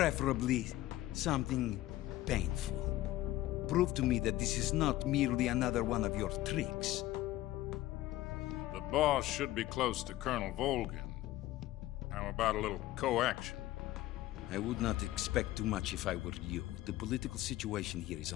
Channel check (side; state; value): right; quieter; 15.7 dB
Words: something painful. Prove to me that this is not merely another one of your tricks. The boss should be close to Colonel Volgin. How about a little coaction? I would not expect too much if I were you. The political situation here is